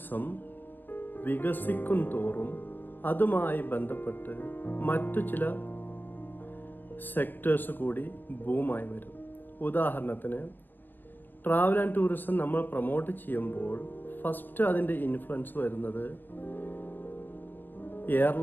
വികസിക്കും തോറും അതുമായി ബന്ധപ്പെട്ട് മറ്റു ചില സെക്ടേഴ്സ് കൂടി ബൂമായി വരും. ഉദാഹരണത്തിന്, ട്രാവൽ ആൻഡ് ടൂറിസം നമ്മൾ പ്രൊമോട്ട് ചെയ്യുമ്പോൾ ഫസ്റ്റ് അതിൻ്റെ ഇൻഫ്ലുവൻസ് വരുന്നത്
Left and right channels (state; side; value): late; right; 0.093 ms